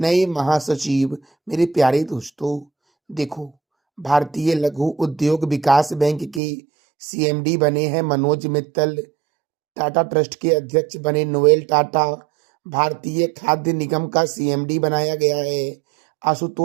महासचिव। मेरे प्यारे दोस्तों देखो, भारतीय लघु उद्योग विकास बैंक के सीएमडी बने हैं मनोज मित्तल। टाटा ट्रस्ट के अध्यक्ष बने नोएल टाटा। भारतीय खाद्य निगम का सीएमडी बनाया गया है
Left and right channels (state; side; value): drops out; left; at 6.4 s